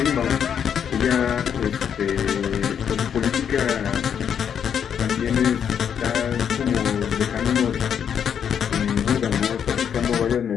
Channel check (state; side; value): quieter; right; 8.1 dB